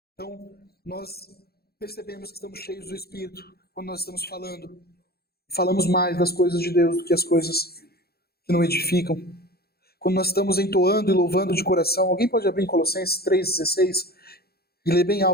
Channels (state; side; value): late; right; 0.46 ms